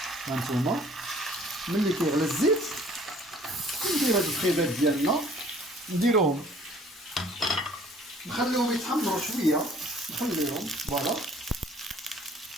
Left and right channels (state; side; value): normal; both; correlation 0.55